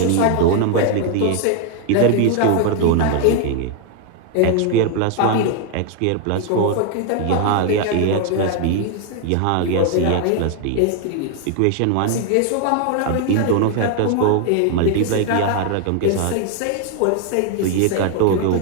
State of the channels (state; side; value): different; both; correlation 0.00